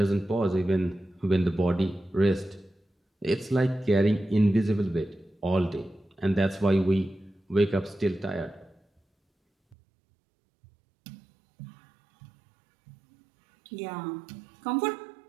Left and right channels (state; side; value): drops out; left; at 9.8 s